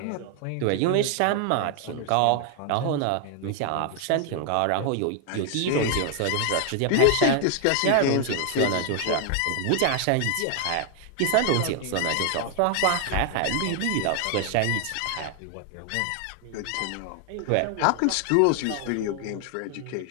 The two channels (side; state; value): both; different; correlation 0.00